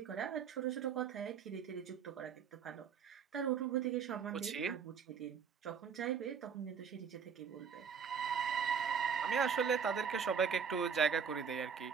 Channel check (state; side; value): quieter; left; 6.8 dB